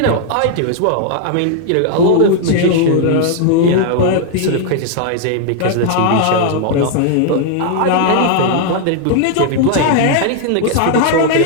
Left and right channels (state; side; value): different; both; correlation 0.00